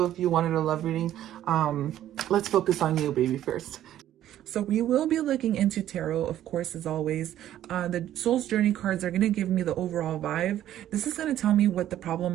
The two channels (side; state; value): left; quieter; 12.2 dB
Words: if you wanted a love reading, let's focus on you, baby, first. So we will be looking into tarot, of course, as always. The Soul's Journey cards are going to give me the overall vibe. This is going to tell me what the problem